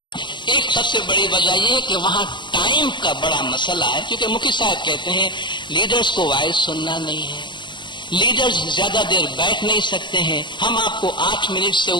ہیں۔ ایک سب سے بڑی وجہ یہ ہے کہ وہاں ٹائم کا بڑا مسئلہ ہے، کیونکہ مفتی صاحب کہتے ہیں لیڈرز کو وائز سننا نہیں ہے، لیڈرز زیادہ دیر بیٹھ نہیں سکتے ہیں، ہم آپ کو 8 منٹ سے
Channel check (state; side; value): late; right; 0.22 ms